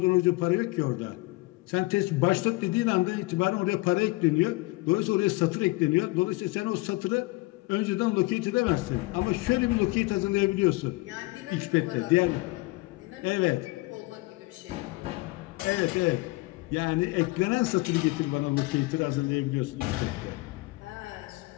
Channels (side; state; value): right; quieter; 22.6 dB